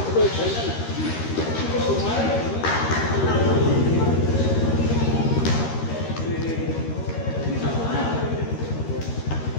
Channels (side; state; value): right; late; 13 ms